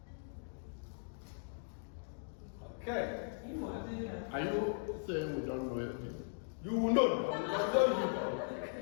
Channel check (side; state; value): right; silent; digital silence